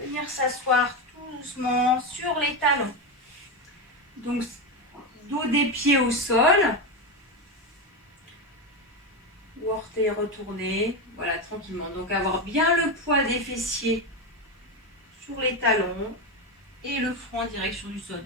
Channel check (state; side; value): normal; both; correlation 0.13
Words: s'asseoir tout doucement sur les talons. Donc, dos des pieds au sol. Ou orteils retournés. Voilà, tranquillement. Donc, avoir bien le poids des fessiers sur les talons et le front en direction du sol.